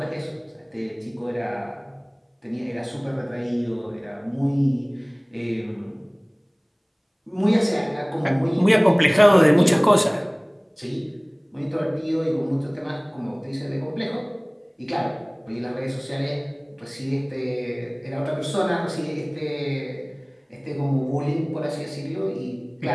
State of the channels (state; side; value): identical; both; correlation 1.00